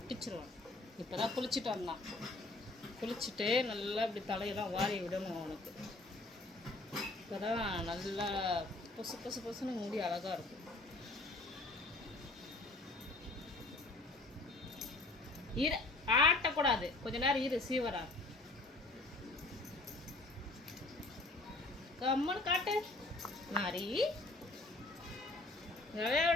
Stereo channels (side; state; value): right; quieter; 3.0 dB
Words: இப்போ தான் குளிச்சுட்டு வந்தான். குளிச்சுட்டு நல்லா இப்படி தலையெல்லாம் வாரி விடணும் அவனுக்கு. இப்போ தான் நல்லா பொசு பொசு பொசுன்னு முடி அழகாக இருக்கும். இரு, ஆட்டக்கூடாது, கொஞ்ச நேரம் இரு. சீவரா கம்மனு காட்டு. மாறி